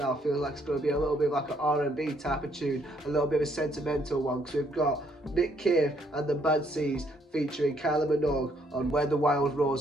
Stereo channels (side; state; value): both; normal; correlation 0.69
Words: feels like it's going to be a little bit like an R&B type of tune, a little bit of a sentimental one, because we've got Nick Cave and the Bad Seeds featuring Kylie Minogue on Where the Wild